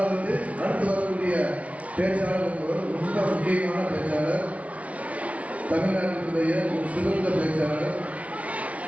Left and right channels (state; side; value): late; left; 0.066 ms